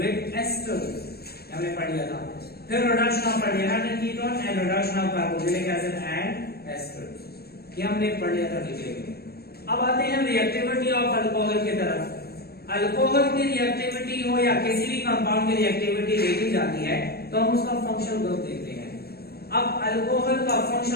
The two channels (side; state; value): right; late; 0.46 ms